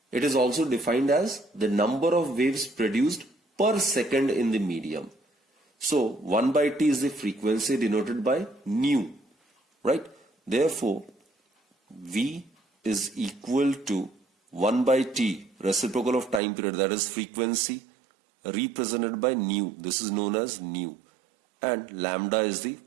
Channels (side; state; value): left; drops out; at 16.4 s